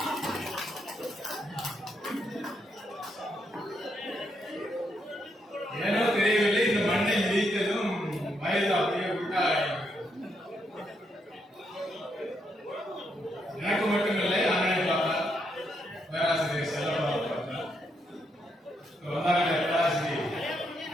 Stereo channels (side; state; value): both; normal; correlation 0.78